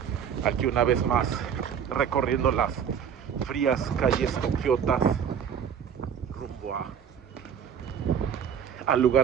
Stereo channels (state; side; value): quieter; left; 8.0 dB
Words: aquí una vez más recorriendo las frías calles tokiotas rumbo al